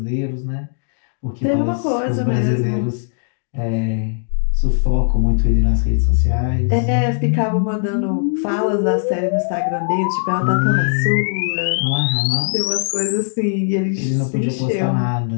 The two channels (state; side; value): silent; right; digital silence